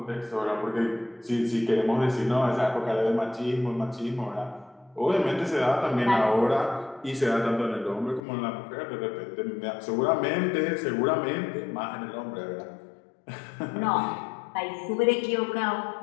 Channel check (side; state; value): right; drops out; at 8.2 s